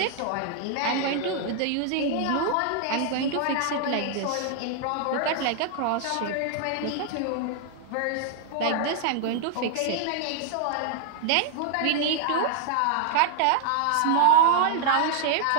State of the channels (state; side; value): different; both; correlation -0.01